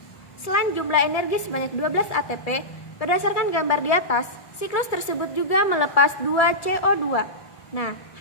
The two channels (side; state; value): right; late; 1.7 ms